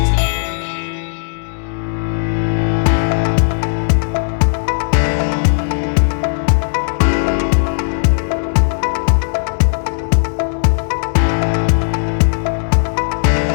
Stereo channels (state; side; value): silent; right; digital silence